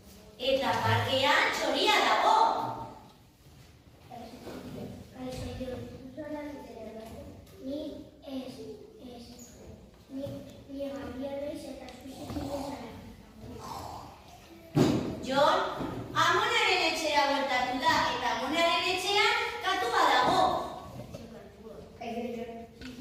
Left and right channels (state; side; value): identical; both; correlation 1.00